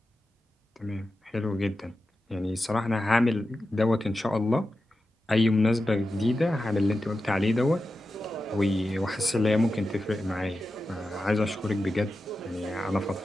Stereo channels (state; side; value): normal; both; correlation 0.92